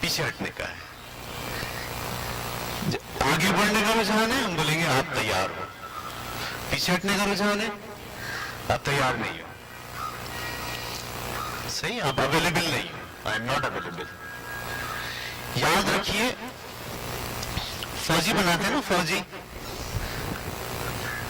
ہٹنے کا ہے. آگے بڑھنے کا رجحان ہے، ہم بولیں گے آپ تیار ہو. پیچھے ہٹنے کا رجحان ہے، آپ تیار نہیں ہو. صحیح، آپ اویلیبل نہیں ہو. I am not available. یاد رکھیے، فوجی بناتے ہیں نا،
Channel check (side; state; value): both; identical; correlation 1.00